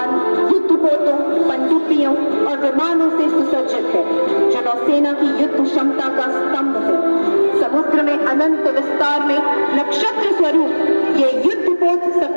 और विमानों से सुसज्जित है, जो नौसेना की युद्ध क्षमता का स्तंभ है। समुद्र में अनंत विस्तार में नक्षत्र स्वरूप ये युद्धपोत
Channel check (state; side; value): inverted; both; correlation -1.00